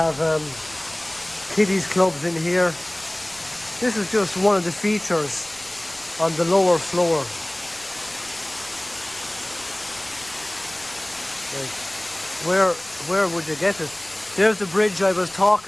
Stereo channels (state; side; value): noise; left; rumble, 27 dB below the sound